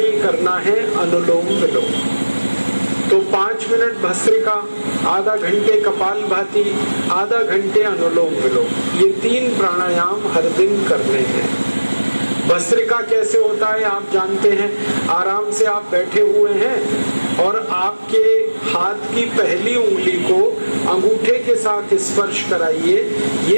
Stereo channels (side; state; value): both; inverted; correlation -1.00